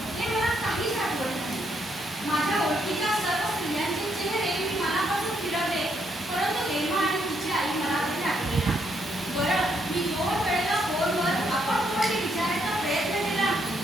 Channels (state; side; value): normal; both; correlation 0.75